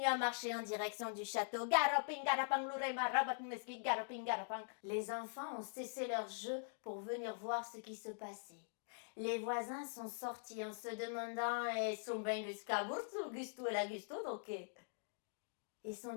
à marcher en direction du château. Garoping, garapang, l'oreima, rabat, mesquit, garoping, garapang. Les enfants ont cessé leur jeu pour venir voir ce qui se passait. Les voisins sont sortis en se demandant « Sont ben jusqu'à Burtu, Gusto et la Gusto, donc ils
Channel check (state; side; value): silent; right; digital silence